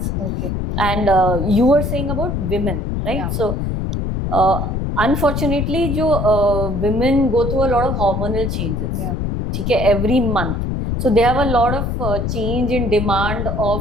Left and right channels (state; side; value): noise; left; rumble, 1 dB below the sound